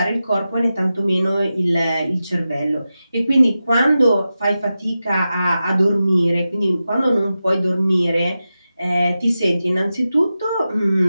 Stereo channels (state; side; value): inverted; both; correlation -0.92